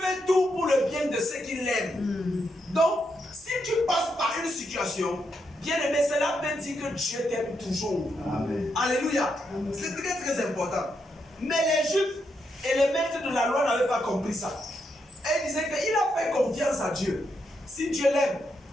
fait tout pour le bien de ceux qui l'aiment. Donc, si tu passes par une situation, bien aimé, cela veut dire que Dieu t'aime toujours. Amen. Alléluia. C'est très très important. Mais les Juifs et les maîtres de la loi n'avaient pas compris ça. Et ils disaient qu'il a fait confiance à Dieu. Si Dieu l'aime,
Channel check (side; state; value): both; normal; correlation 0.81